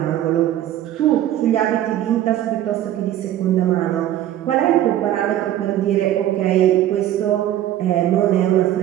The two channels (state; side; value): quieter; left; 12.5 dB